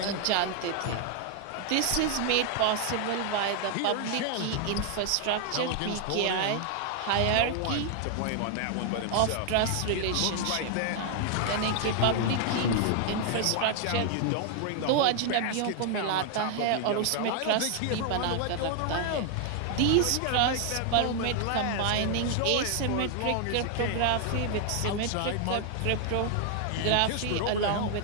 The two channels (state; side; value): different; both; correlation 0.00